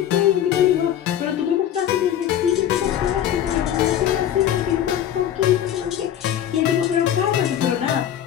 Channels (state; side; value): quieter; right; 10.6 dB